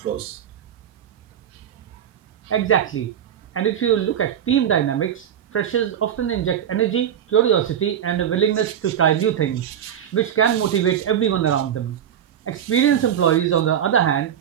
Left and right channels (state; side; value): quieter; left; 9.5 dB